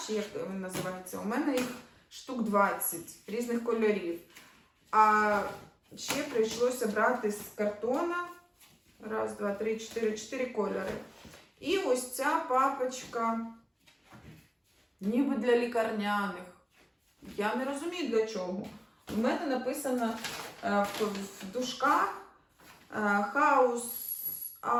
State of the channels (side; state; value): both; identical; correlation 1.00